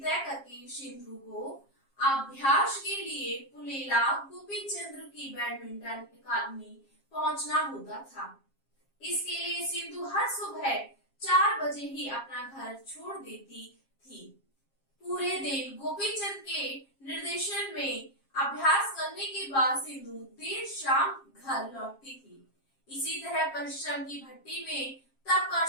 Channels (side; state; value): right; late; 7.4 ms